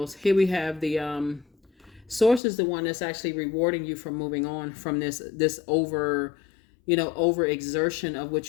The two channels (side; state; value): right; drops out; at 2.4 s